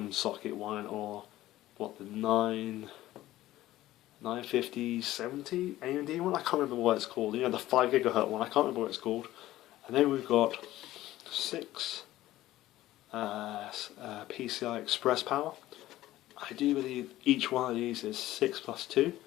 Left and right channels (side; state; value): right; quieter; 15.3 dB